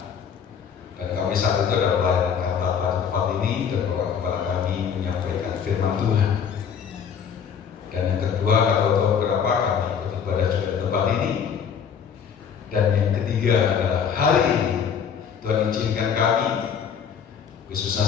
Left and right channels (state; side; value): quieter; right; 7.4 dB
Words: dan kami saat itu adalah pelayanan kata tempat ini dan Bapak Gembala kami menyampaikan firman Tuhan. Dan yang kedua nggak tahu berapa kami ikut ibadah juga di tempat ini. Dan yang ketiga adalah hari ini Tuhan izinkan kami, khususnya